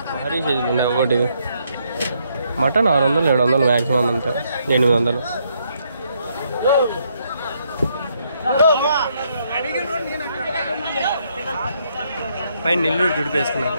భారీ సైజులు ఉన్నాయి ఒకటి. మటన్ 600-700 మ్యాక్సిమం అంతే. 800. పైన నెల్లూరు దుడిపేసుకున్నారు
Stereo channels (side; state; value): both; inverted; correlation -0.73